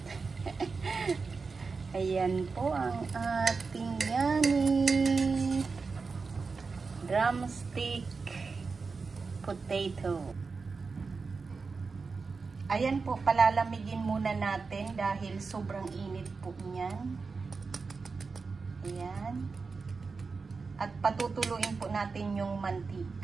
Ayan po ang ating yummy drumstick potato. Ayan po, palalamigin muna natin dahil sobrang init po niyan. Ayan. At patutuluin po natin yung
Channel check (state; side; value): quieter; left; 4.6 dB